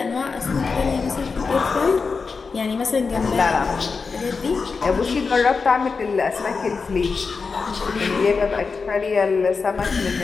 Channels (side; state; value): right; quieter; 4.8 dB